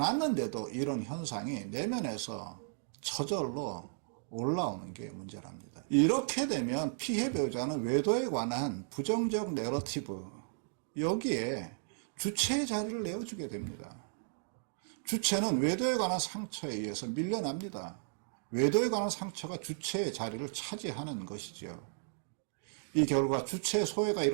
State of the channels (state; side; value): silent; left; digital silence